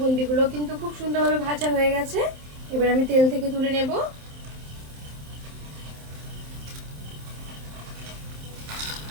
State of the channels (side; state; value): left; late; 27 ms